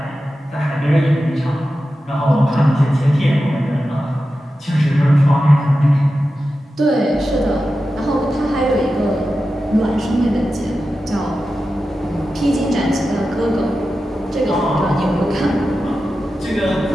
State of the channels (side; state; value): both; normal; correlation 0.92